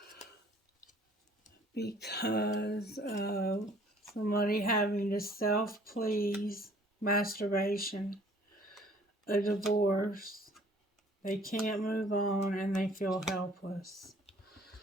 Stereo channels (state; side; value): normal; both; correlation 0.56